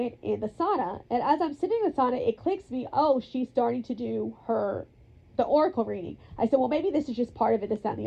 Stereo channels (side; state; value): both; identical; correlation 1.00